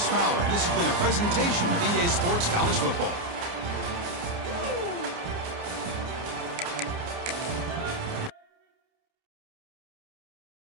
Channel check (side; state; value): left; late; 29 ms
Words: Fowler. And this has been a presentation of EA Sports College Football.